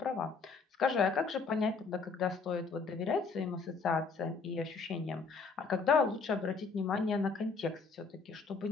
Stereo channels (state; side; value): quieter; right; 4.7 dB